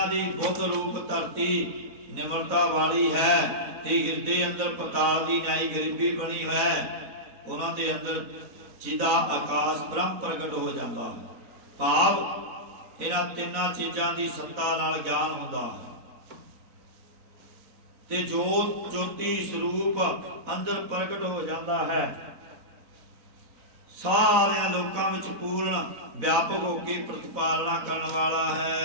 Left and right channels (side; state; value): left; late; 4.0 ms